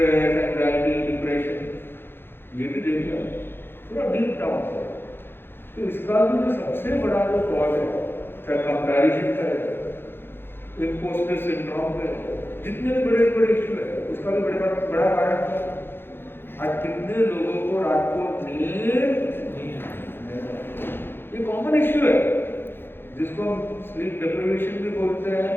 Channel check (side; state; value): right; late; 0.10 ms